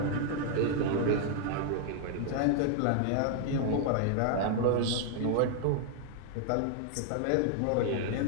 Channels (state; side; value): different; both; correlation 0.00